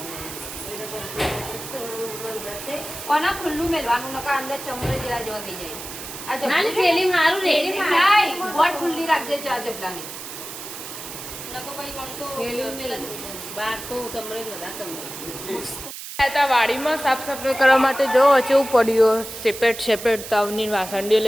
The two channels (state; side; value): noise; right; hiss, 10 dB below the sound